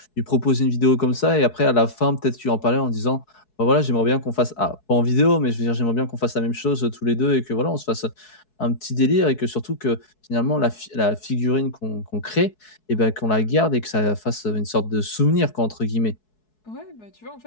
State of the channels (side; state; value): right; late; 4.7 ms